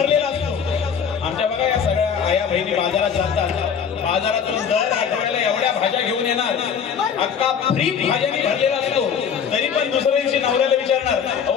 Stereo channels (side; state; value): right; quieter; 7.3 dB